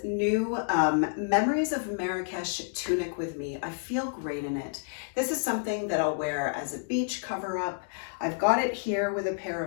new Memories of Marrakesh tunic with me. I feel great in it. This is something that I'll wear as a beach cover-up. I've got it here with a pair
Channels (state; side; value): silent; right; digital silence